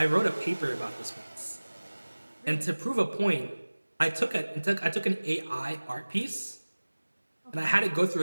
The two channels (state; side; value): inverted; both; correlation -1.00